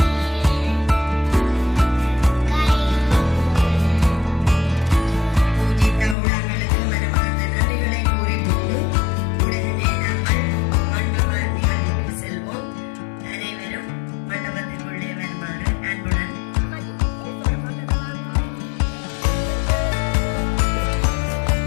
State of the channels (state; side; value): drops out; right; at 6.2 s